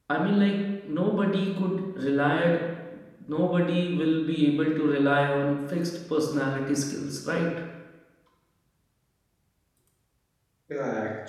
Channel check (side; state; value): both; identical; correlation 1.00